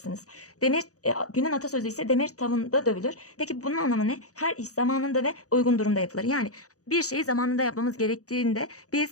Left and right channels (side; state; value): right; late; 0.66 ms